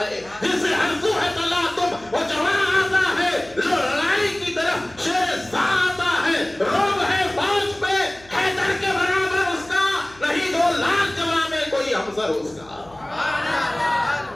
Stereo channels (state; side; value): noise; left; hum, 26 dB below the sound